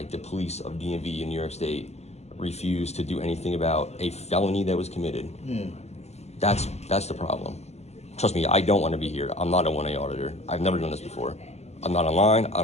the police of DMV in New York State, refused to do anything about a felony that was committed. That's the problem. Trust me, I don't want to be here. I'm not a 1A auditor. I've never done this before. I'm not online. I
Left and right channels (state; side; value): late; right; 0.32 ms